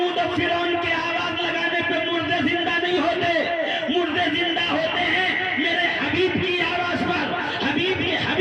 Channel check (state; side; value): identical; both; correlation 1.00